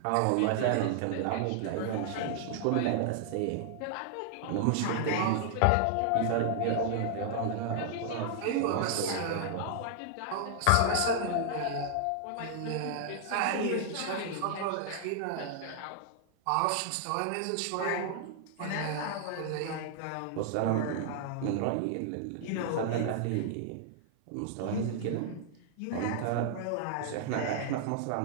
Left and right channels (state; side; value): different; both; correlation -0.01